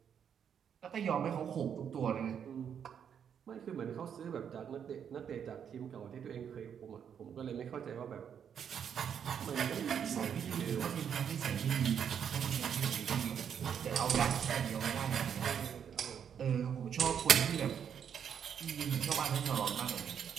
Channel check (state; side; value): quieter; left; 8.1 dB